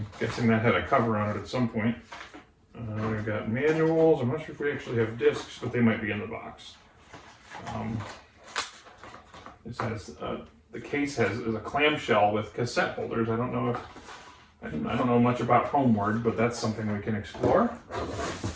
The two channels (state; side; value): identical; both; correlation 1.00